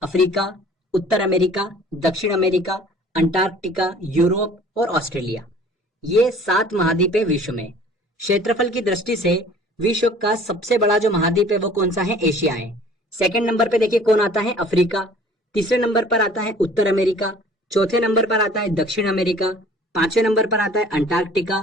अफ्रीका, उत्तर अमेरिका, दक्षिण अमेरिका, अंटार्कटिका, यूरोप और ऑस्ट्रेलिया। ये 7 महाद्वीप है विश्व में। क्षेत्रफल की दृष्टि से विश्व का सबसे बड़ा जो महाद्वीप है वो कौन सा है? एशिया है। सेकंड नंबर पे देखिए कौन आता है? अफ्रीका। तीसरे नंबर पर आता है उत्तर अमेरिका। चौथे नंबर पर आता है दक्षिण अमेरिका। पांचवें नंबर पर आता है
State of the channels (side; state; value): both; normal; correlation 0.50